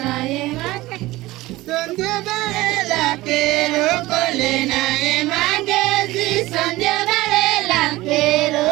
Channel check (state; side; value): quieter; left; 18.5 dB